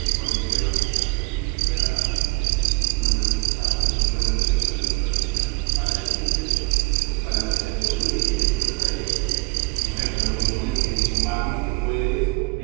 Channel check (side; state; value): left; quieter; 30.1 dB